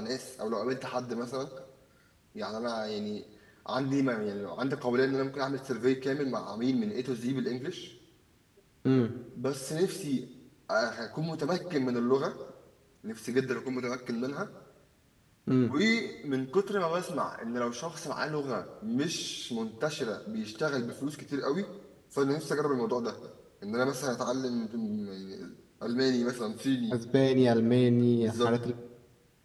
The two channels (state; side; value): identical; both; correlation 1.00